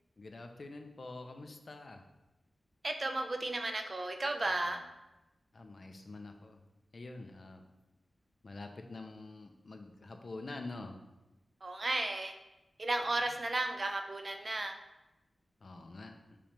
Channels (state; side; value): normal; both; correlation 0.95